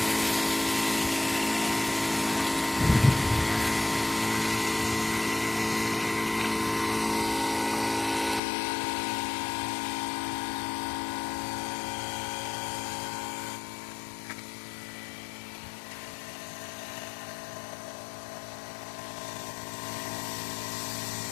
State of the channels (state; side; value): drops out; right; at 8.4 s